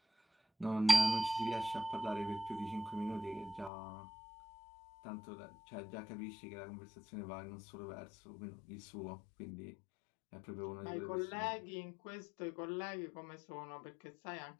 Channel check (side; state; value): right; drops out; at 3.7 s